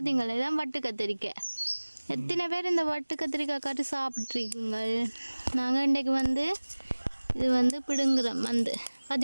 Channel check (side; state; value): both; inverted; correlation -1.00